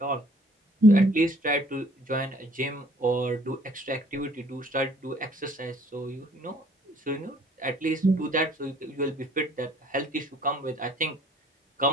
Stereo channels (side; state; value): both; normal; correlation 0.57